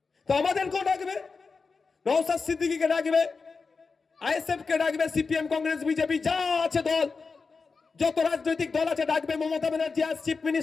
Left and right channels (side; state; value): right; quieter; 4.6 dB